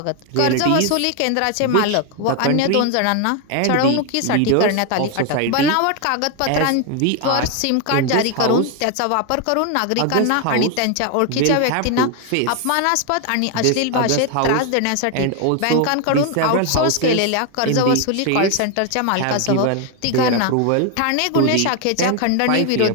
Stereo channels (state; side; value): different; both; correlation 0.01